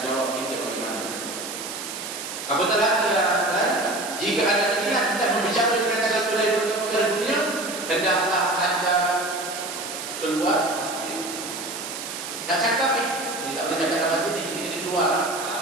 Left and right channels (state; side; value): noise; right; hiss, 7 dB below the sound